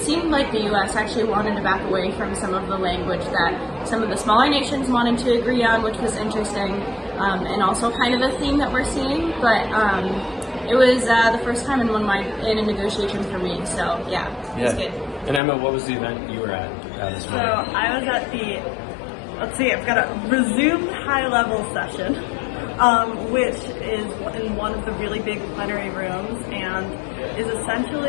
seemed like the U.S. actually wanted to back away from some of the language that some of the smaller nations wanted to agree on, which was interesting, and also kind of a theme that we're seeing. But it was the first time in a negotiation for me, so it was good. And Emma, what was the event you were at this morning? So I was at I've got a resumed high-level session, which is in one of the really big plenary rooms and is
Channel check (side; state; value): right; drops out; at 15.4 s